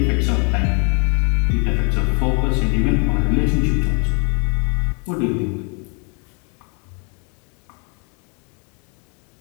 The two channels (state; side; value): quieter; right; 35.9 dB